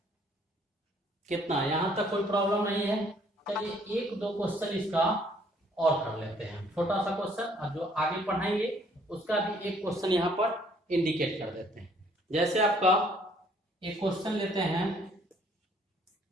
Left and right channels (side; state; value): both; normal; correlation 0.62